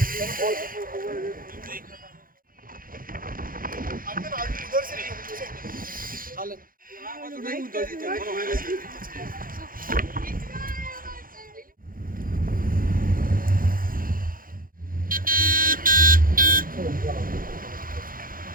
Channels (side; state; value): left; late; 0.41 ms